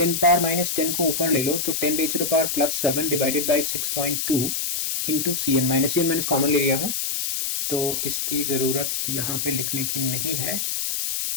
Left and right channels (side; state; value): left; noise; hiss, 1 dB below the sound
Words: को ऊपर ले लो तो 10⁻+7 divided by 6.2 into Cn minus common ले लिया हूं, तो इसकी जरूरत यहाँ पे लिखने की नहीं है।